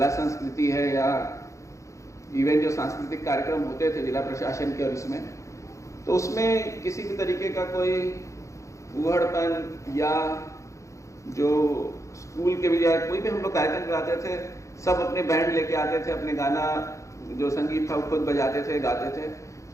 संस्कृति है, या इवन जो सांस्कृतिक कार्यक्रम होते थे जिला प्रशासन के और इसमें, तो उसमें किसी भी तरीके का कोई उहड़पन या जो स्कूल के भी या कोई भी हम लोग कार्यक्रम कराते थे, सब अपने बैंड लेके आते थे, अपने गाना जो संगीत था वो खुद बजाते थे, गाते थे।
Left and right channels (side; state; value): right; late; 0.15 ms